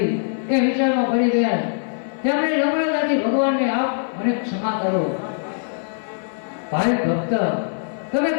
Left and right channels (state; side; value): silent; right; 57 dB below the other